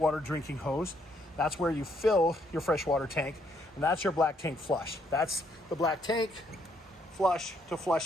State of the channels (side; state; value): both; normal; correlation 0.71